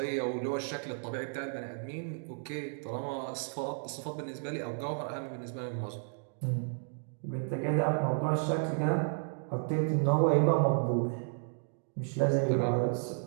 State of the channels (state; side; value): silent; left; digital silence